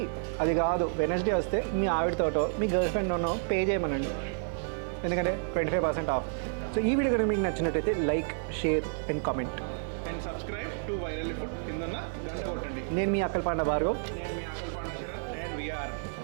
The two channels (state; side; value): silent; left; 58 dB below the other